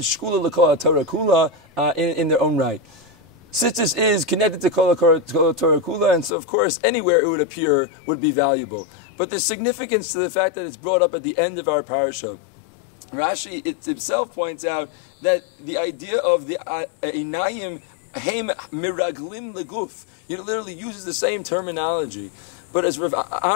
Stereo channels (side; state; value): right; drops out; at 6.3 s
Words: Shkula l'kol Torah Kula, in their own right. Tzitzis is connected to Kol Torah Kula, and so of course anywhere it would appear would be valuable. But there's significance to the fact that it's brought up at the end of our parasha. Rashi itself points out that the idea of the Einayim Heim miraglim leguf. He literally uses the same terminology. But as Rav